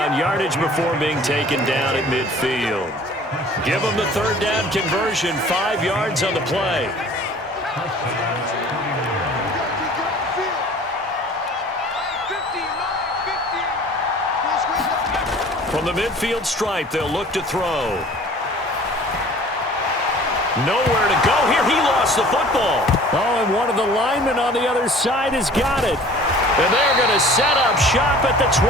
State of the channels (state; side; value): normal; both; correlation 0.48